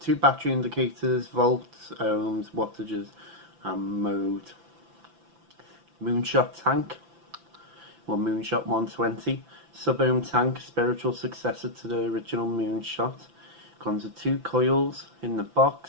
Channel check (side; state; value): left; late; 5.9 ms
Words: battery indicators, volts, ohms, wattages and mode. Moonshot tank, or Moonshot 120, sub-ohm tank, spiritual successor to the original Moonshot. Comes with 2 coils in the